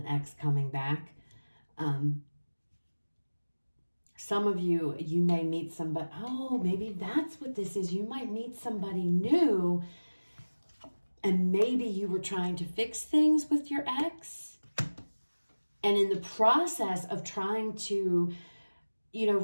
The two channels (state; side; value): inverted; both; correlation -1.00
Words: ex coming back. Some of you, you may meet somebody, oh, maybe that's what this is. You might meet somebody new, and maybe you were trying to fix things with your ex. And in the process of trying to,